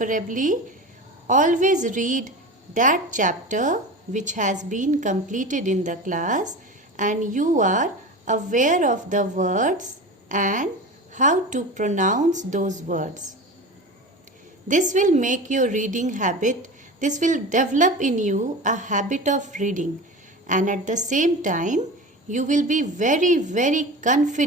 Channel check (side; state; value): both; normal; correlation 0.30